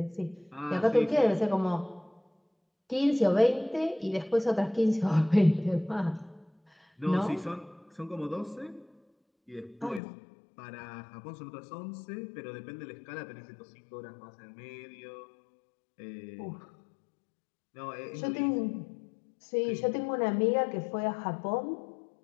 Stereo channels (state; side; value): drops out; right; at 10.0 s